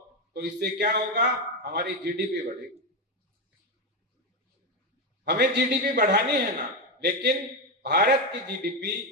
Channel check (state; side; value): normal; both; correlation 0.10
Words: तो इससे क्या होगा? हमारी जीडीपी बढ़ेगी। हमें जीडीपी बढ़ानी है ना, लेकिन भारत की जीडीपी,